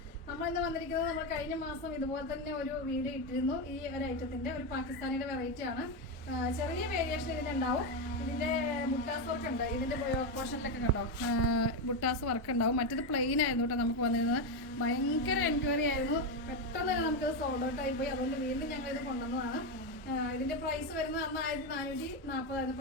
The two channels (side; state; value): both; normal; correlation 0.09